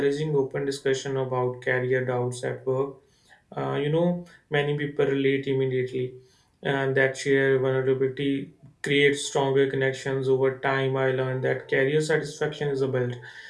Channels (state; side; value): identical; both; correlation 1.00